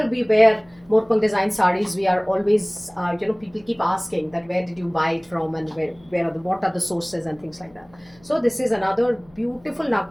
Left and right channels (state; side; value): noise; left; hum, 28 dB below the sound